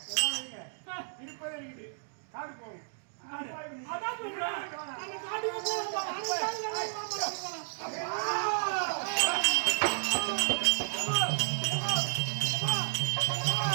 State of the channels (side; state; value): left; silent; digital silence